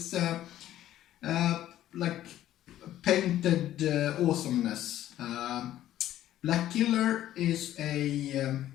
like painted awesomeness. Black Killer is a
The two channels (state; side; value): quieter; right; 12.8 dB